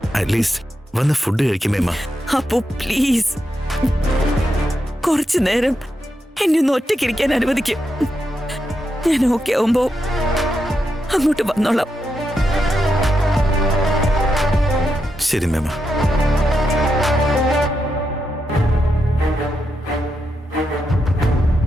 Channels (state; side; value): normal; both; correlation 0.85